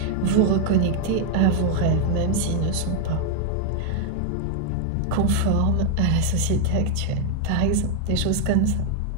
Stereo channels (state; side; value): different; both; correlation 0.00